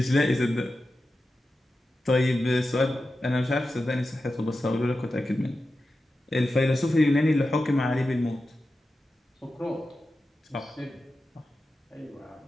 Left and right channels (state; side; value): normal; both; correlation 0.92